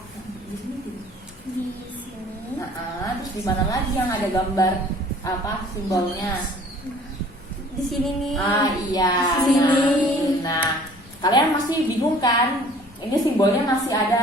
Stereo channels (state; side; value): normal; both; correlation 0.52